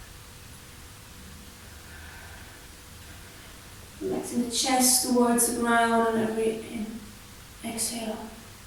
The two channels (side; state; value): both; identical; correlation 1.00